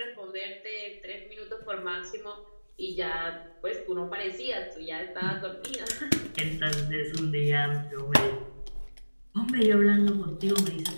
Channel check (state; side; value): inverted; both; correlation -1.00